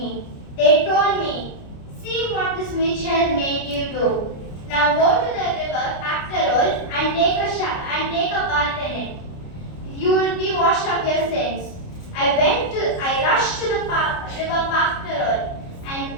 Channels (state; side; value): late; right; 29 ms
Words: They told me, see what this witch has made you do. Now go to the river Pactarol and take a bath in it. You will be washed of your sins. I rushed to the river Pactarol